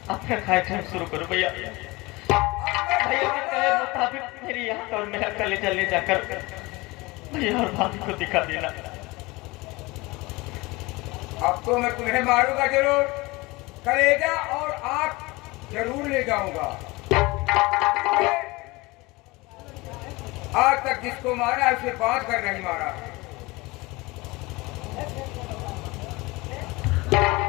अपना कार्यक्रम शुरू करो भैया। भैया के कहे मुताबिक मेरी आंख और मेरा कलेजा ले जाकर भैया और भाभी को दिखा देना। अब तो मैं तुम्हें मारूंगा जरूर, कलेजा और आंख जरूर ले जाऊंगा। आज तक जिसको मारा उसे बांध कर नहीं मारा।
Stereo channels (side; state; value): right; quieter; 22.8 dB